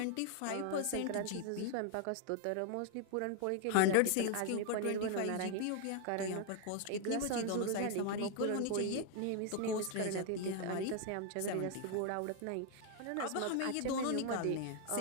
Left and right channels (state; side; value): different; both; correlation 0.00